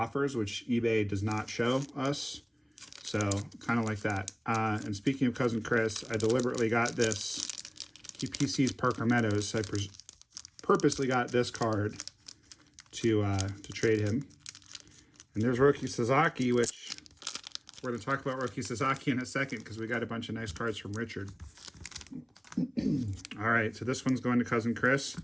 which eBay does not show us. So kind of like that. And speaking of cousin Chris, I deliberately got this. He PCs Parker Meadows, so I purposely got this card to trade him. And there's Roki Sasaki, which we're going to talk about Roki Sasaki in a second because we got a bunch of nice cards from Richard. All right, so this one's going to cousin Chris.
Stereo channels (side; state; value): both; identical; correlation 1.00